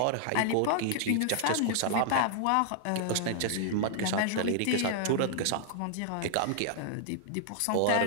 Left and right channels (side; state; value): both; different; correlation -0.01